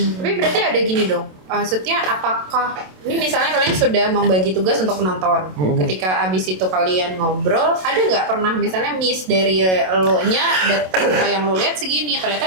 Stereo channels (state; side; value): late; left; 27 ms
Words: Tapi berarti ada gini dong. Maksudnya apakah ini misalnya kalian sudah membagi tugas untuk penonton. Ketika abis itu kalian ngobrol, ada nggak pernah misalnya miss dari lo-nya data yang lo lihat segini, ternyata